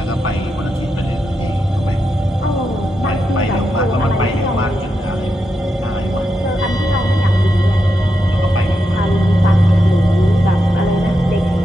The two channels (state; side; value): normal; both; correlation 0.85